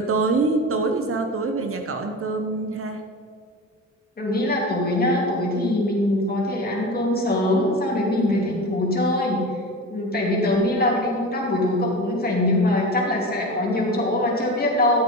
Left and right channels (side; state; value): both; normal; correlation 0.29